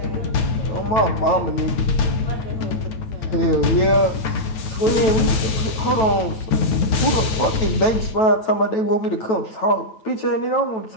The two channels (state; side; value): late; right; 9.4 ms